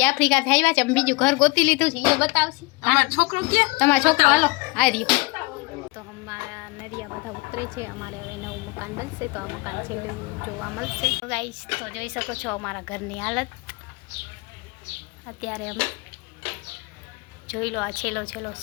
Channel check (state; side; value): quieter; right; 25.1 dB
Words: આફ્રિકાથી આવ્યા છે, અમે બીજું ઘર ગોતી લીધું છે, એ બતાવશી। અમાર છોકરો ક્યાં? તમારો છોકરો હાલો આ રહ્યો। તો અમારા નરિયા બધા ઉતરે છે, અમારે હવે નવું મકાન બનશે તો આ મકાન છેલ્લું જોવા મળશે। ગાઈસ તો જોઈ શકો છો અમારા ઘરની હાલત અત્યારે। અમે જોઈ લો, આ છેલ્લો